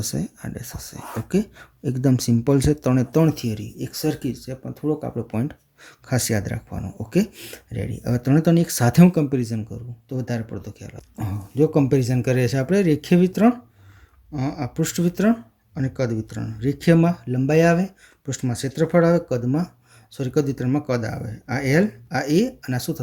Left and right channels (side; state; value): both; identical; correlation 1.00